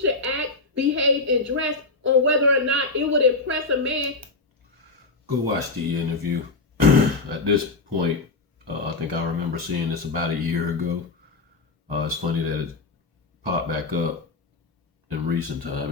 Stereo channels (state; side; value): quieter; right; 3.5 dB